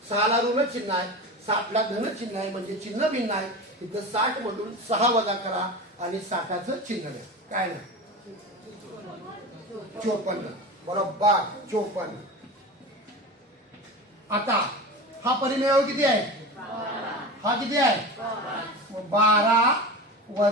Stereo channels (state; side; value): normal; both; correlation 0.29